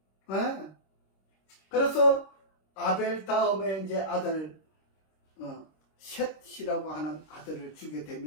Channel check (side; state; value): right; late; 26 ms